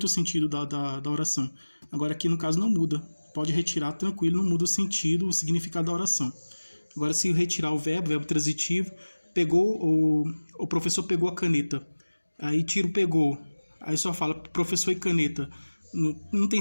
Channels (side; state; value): both; inverted; correlation -1.00